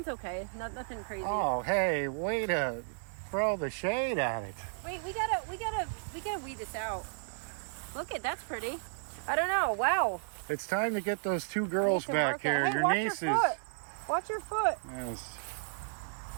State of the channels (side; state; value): left; silent; 56 dB below the other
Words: okay. Nothing crazy. Oh, hey, way to throw the shade at it. Wait, we gotta weed this out. Look at that's pretty. I don't know. Wow. It's time to get those two girls back here. Hey, Your nieces. Watch your foot. Yes.